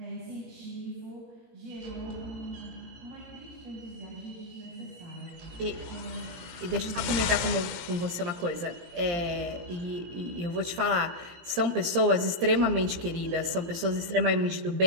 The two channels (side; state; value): left; late; 17 ms